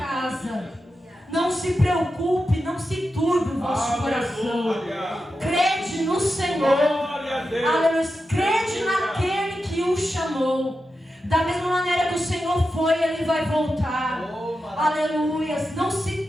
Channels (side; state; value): both; normal; correlation 0.90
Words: Não se preocupe, não se turbe o vosso coração. Crede no Senhor. Aleluia. Crede naquele que o chamou. Da mesma maneira que o Senhor foi, Ele vai voltar. Aleluia. Não se